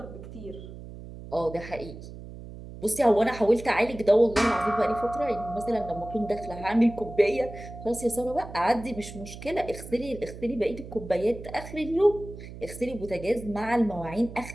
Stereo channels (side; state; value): right; noise; hum, 13 dB below the sound